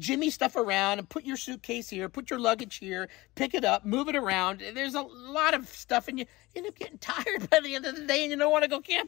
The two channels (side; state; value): right; quieter; 20.5 dB